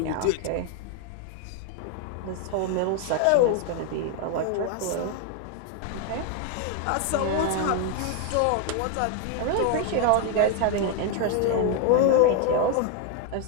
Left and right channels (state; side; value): different; both; correlation 0.01